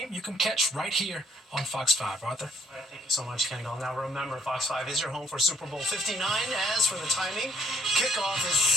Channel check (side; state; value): both; normal; correlation 0.64